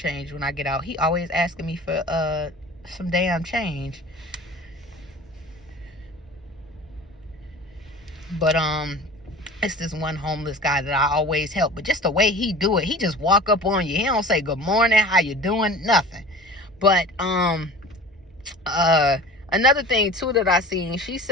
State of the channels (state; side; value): normal; both; correlation 0.40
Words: when I get out. He always asking me for some damn change. But it's this one homeless guy that I always help. But just the way he do it, he just walk up on you. He don't say good morning, how you doing, nothing. But another thing too that I seen, she